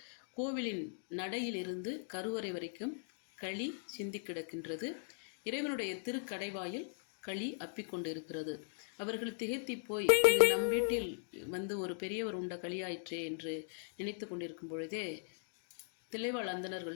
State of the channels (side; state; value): right; silent; digital silence